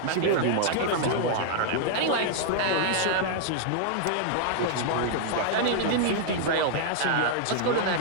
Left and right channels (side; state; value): both; different; correlation -0.01